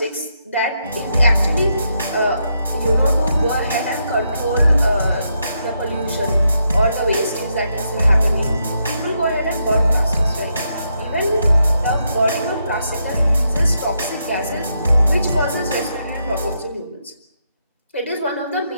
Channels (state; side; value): inverted; both; correlation -0.80